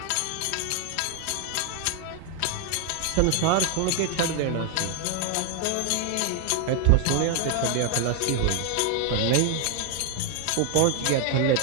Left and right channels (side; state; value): both; different; correlation 0.00